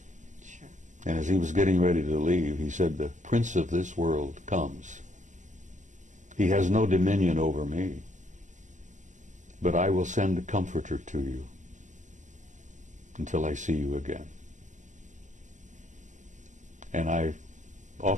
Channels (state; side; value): late; left; 0.36 ms